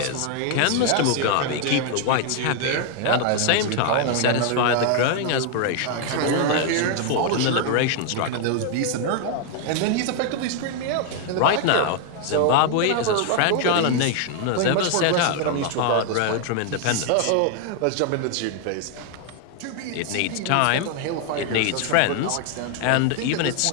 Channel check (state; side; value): different; both; correlation 0.00